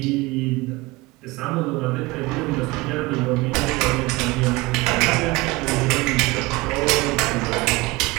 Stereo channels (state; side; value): quieter; left; 22.3 dB